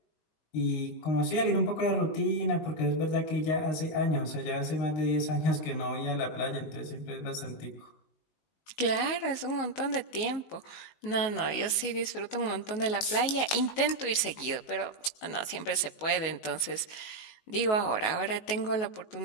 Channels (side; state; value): right; late; 19 ms